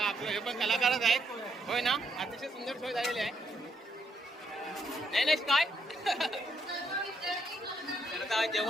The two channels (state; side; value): normal; both; correlation 0.75